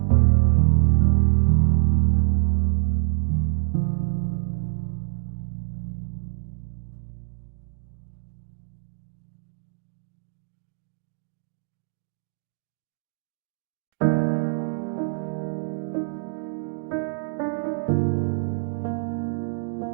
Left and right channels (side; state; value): left; silent; 61 dB below the other